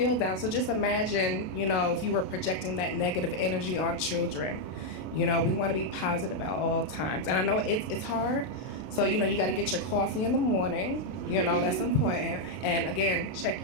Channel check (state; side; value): late; right; 32 ms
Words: down. So just imagine, if you were projecting that negative energy on children. We want to be positive at all times. And I know it's hard. So, you got to get your coffee in the morning. That's important. And again, check